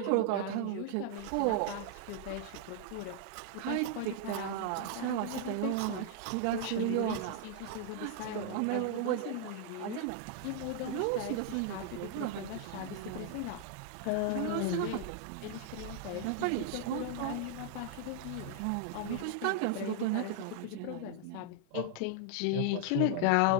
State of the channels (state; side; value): different; both; correlation 0.00